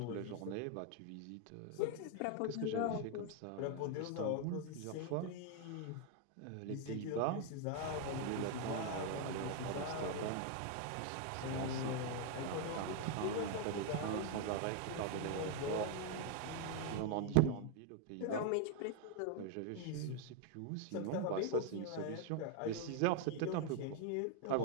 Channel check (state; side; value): different; both; correlation 0.00